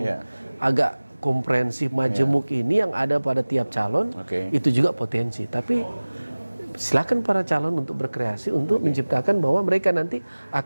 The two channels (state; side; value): inverted; both; correlation -1.00